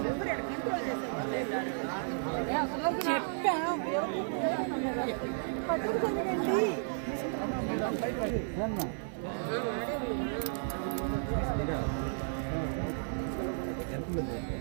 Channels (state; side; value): silent; left; 56 dB below the other